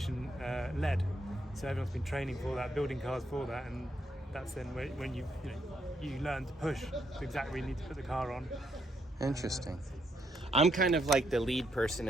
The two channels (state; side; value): normal; both; correlation 0.76